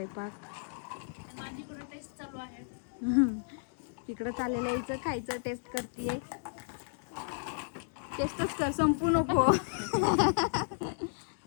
माझीकडे टेस्ट चालू आहे. इकडं चाललेलं यायचं खायचं, टेस्ट करतीये. टेस्टच कर, संपू नको.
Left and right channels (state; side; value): silent; right; digital silence